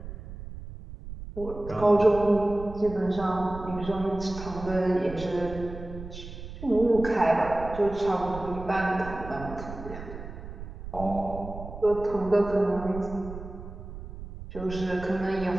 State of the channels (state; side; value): noise; right; rumble, 11 dB below the sound